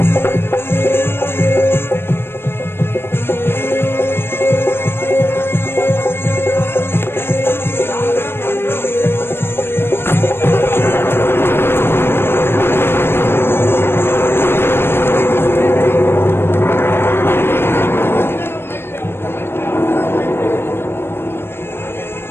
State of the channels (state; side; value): late; right; 0.11 ms